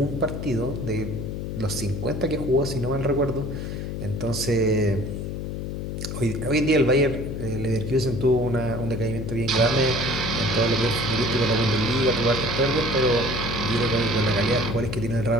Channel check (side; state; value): left; noise; hum, 5 dB below the sound